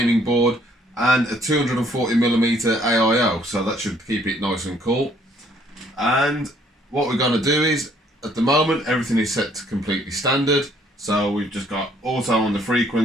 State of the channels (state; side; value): normal; both; correlation 0.63